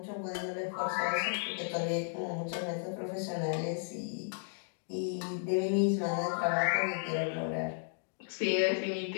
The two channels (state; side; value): silent; right; digital silence